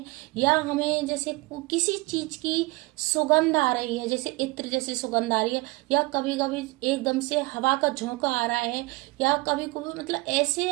या हमें जैसे किसी चीज की सुगंध आ रही है, जैसे इत्र जैसी सुगंध आ रही है, या कभी कभी एकदम से हवा का झोंका आ रहा है, या कभी कभी मतलब ऐसे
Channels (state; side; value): quieter; left; 23.2 dB